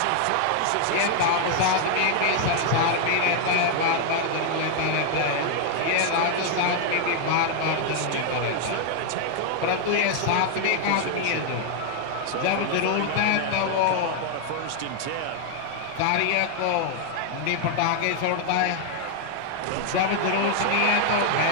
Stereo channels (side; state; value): both; different; correlation 0.00